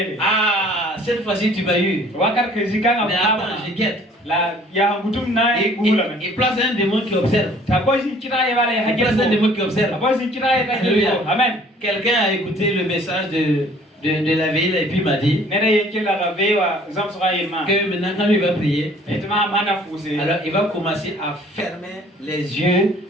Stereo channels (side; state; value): both; normal; correlation 0.55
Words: ah, cette fois-ci tu m'as eu. Mais attends, je guette. Il place un démon qui observe. Il place un démon qui observe. Amen. Quelqu'un a écouté le message de la ville et puis m'a dit que maintenant quand il va prier, alors il va commencer à fermer les yeux